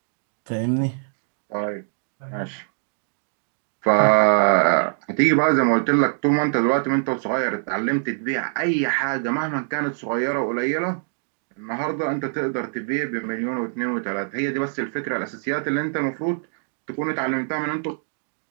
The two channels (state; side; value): silent; left; digital silence